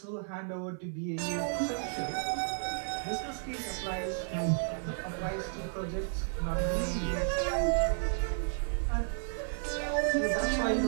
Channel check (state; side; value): silent; left; 56 dB below the other